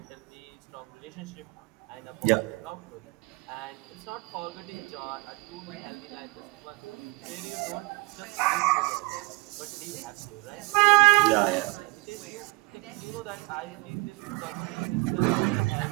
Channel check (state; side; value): quieter; left; 24.0 dB